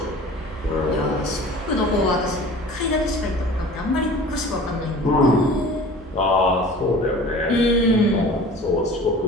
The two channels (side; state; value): both; normal; correlation 0.42